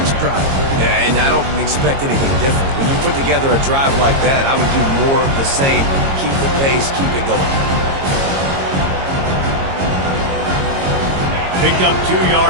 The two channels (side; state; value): left; late; 22 ms